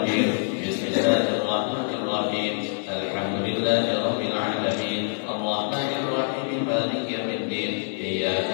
بسم الله الرحمن الرحيم. الحمد لله رب العالمين الرحمن الرحيم مالك يوم الدين إياك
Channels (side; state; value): right; silent; 61 dB below the other